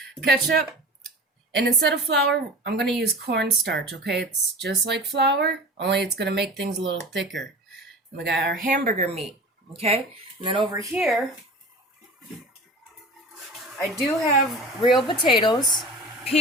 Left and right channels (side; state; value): both; normal; correlation 0.36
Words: Ketchup, and instead of flour, I'm going to use cornstarch, okay? It's just like flour, only it's going to make things a little thicker. And we got our hamburger meat, okay? And then over here, I do have real potatoes,